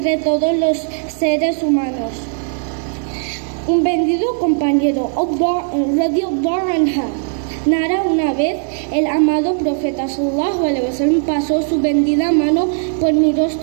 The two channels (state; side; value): silent; left; 61 dB below the other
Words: todos los seres humanos. Un bendito compañero, radiyallahu anha, narra: una vez el amado profeta sallallahu alaihi wasallam pasó su bendita mano por mi